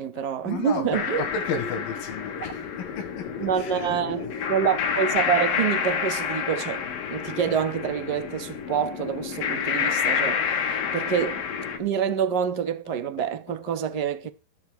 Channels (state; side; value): late; right; 11 ms